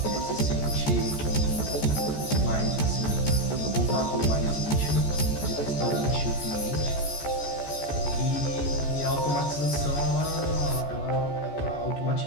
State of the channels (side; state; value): right; late; 14 ms